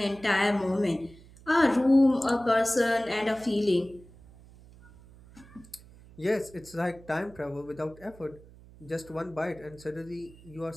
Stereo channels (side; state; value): right; noise; hum, 22 dB below the sound